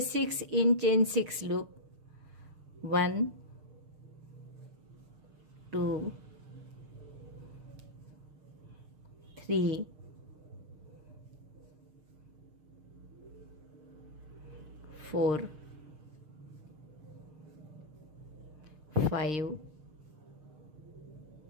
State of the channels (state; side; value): late; left; 6.6 ms